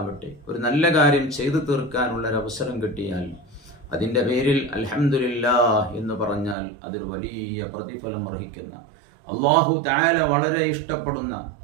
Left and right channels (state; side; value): drops out; left; at 6.6 s